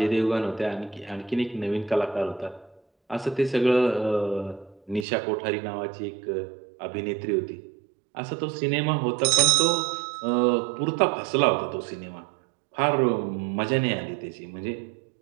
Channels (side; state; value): left; drops out; at 5.1 s